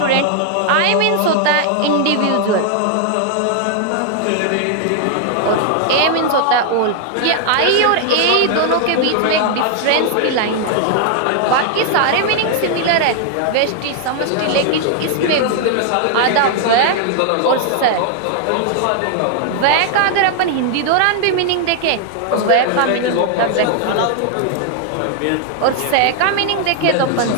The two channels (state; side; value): different; both; correlation 0.00